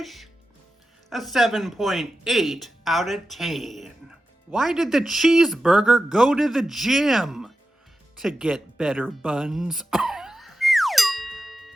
a 7.8 out of 10. Why did the cheeseburger go to the gym? To get better buns.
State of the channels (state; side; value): normal; both; correlation 0.92